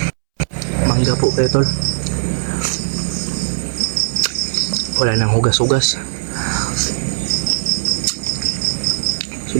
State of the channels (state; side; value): silent; left; 67 dB below the other